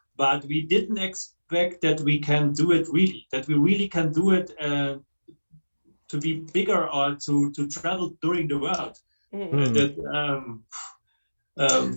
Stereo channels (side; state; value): both; inverted; correlation -1.00